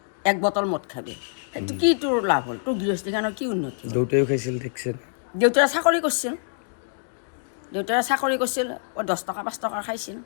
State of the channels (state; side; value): silent; right; digital silence